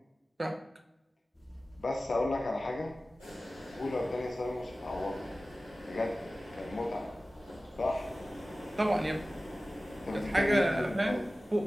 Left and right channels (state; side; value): normal; both; correlation 0.96